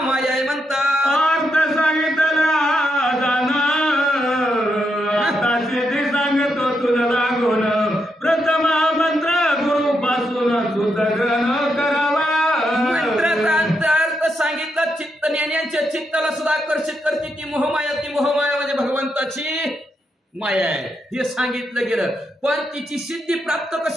आहे म्हणतात। अर्थ सांगितला जाणं आता सिद्धी सांगतो तुला लागून, प्रथम मंत्र गुरु पासून सुधारण करावा। मंत्राचा अर्थ सांगितला, चित्त ज्ञानींच्या चित्ताला सुद्धा आकर्षित करते ती मोहमाया। ती मोहमाया म्हणजे भगवंताची माया आहे हे सांगितलं गेलं, पण तिची सिद्धी प्राप्त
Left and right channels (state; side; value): normal; both; correlation 0.81